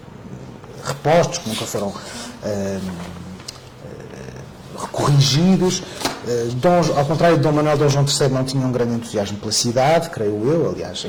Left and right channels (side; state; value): both; identical; correlation 1.00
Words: repostos, que nunca foram corrigidos. Ao contrário de Dom Manuel, Dom João III não tinha um grande entusiasmo pela cidade, creio eu, aliás,